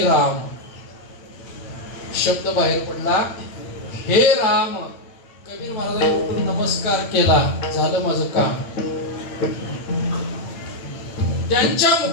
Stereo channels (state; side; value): late; right; 9.0 ms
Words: राम. शब्द बाहेर पडला, हे राम. कबीर महाराजांनी उठून नमस्कार केला, झालं माझं काम. त्यांच्या